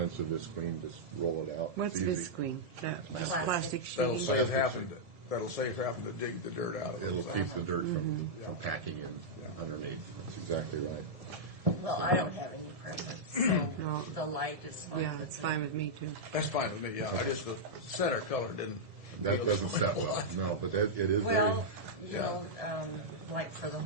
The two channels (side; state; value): left; late; 1.7 ms